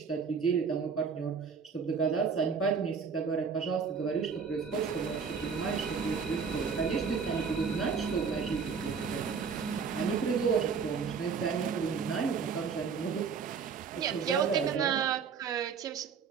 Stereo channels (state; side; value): quieter; left; 5.9 dB